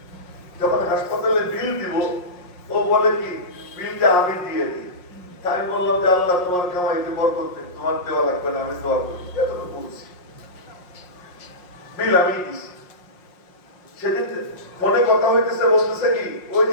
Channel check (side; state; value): right; late; 5.6 ms